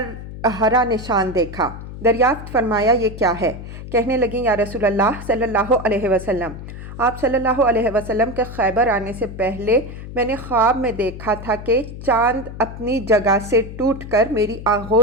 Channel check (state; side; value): noise; left; hum, 11 dB below the sound